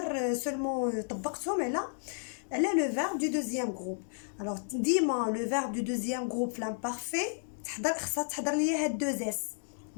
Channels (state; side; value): silent; right; digital silence